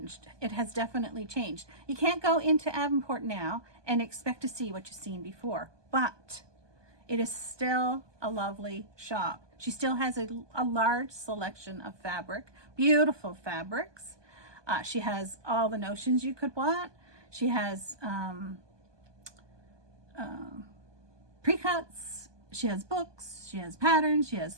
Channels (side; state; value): left; late; 1.2 ms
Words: It has definitely changed. You can't go into Avonport now and expect to see what you've seen before, but it is still a lovely shop. She still has a large selection of fabric, beautiful fabrics. She has all the notions you could want. She has pre-cuts. She has books, she has patterns, she has